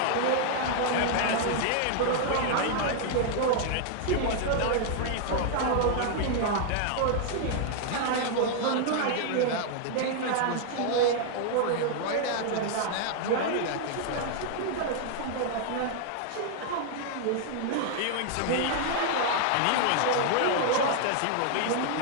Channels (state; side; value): different; both; correlation 0.00